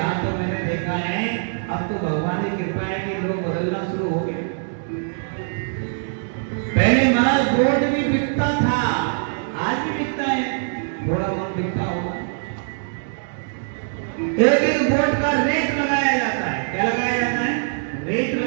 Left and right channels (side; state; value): left; silent; digital silence